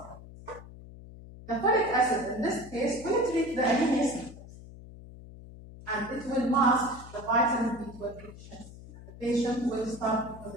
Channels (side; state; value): left; noise; hum, 16 dB below the sound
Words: The folic acid in this case will treat the anemia symptoms, and it will mask the vitamin B12 deficiency. The patient will start